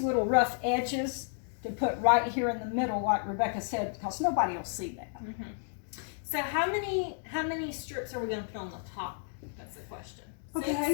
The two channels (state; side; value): silent; right; digital silence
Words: little rough edges to put right here in the middle, like Rebecca said, because nobody will see that. So how many strips are we going to put on the top? That's the question.